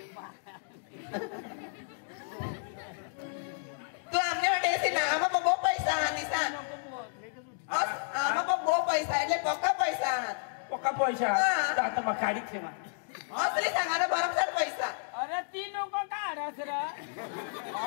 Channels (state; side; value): silent; right; digital silence